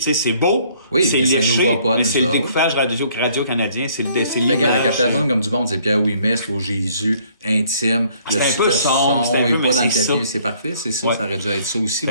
beau, c'est léché, mais c'est le découpage radio-canadien, c'est l'image. La captation comme du monde, c'est Pierre Ouimet, Slow Jésus, intime. C'est un peu sombre, c'est un peu, mais c'est ça. C'est parfait, c'est ça, ça aurait dû être ça aussi.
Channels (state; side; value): inverted; both; correlation -0.61